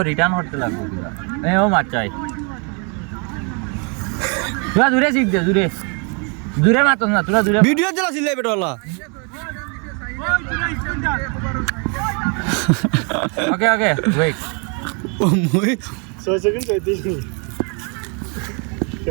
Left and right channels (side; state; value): left; quieter; 36.3 dB